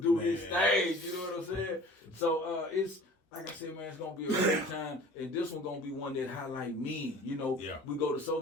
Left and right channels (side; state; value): both; normal; correlation 0.45